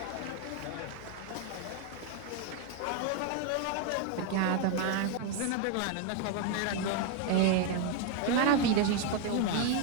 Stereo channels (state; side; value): different; both; correlation 0.01